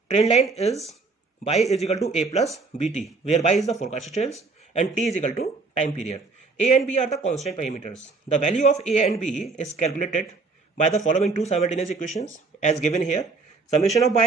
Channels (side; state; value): left; quieter; 4.0 dB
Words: trend line is y is equal to a plus bt, where y is the forecasted sales and t is equal to time period. A and b are the constant parameters. The value of a and b is calculated by the following two simultaneous equations as given here. summation of y